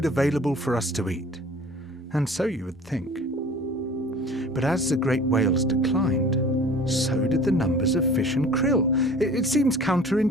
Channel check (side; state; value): both; normal; correlation 0.45